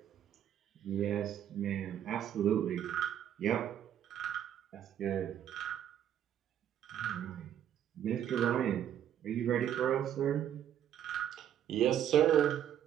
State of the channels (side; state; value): left; quieter; 10.3 dB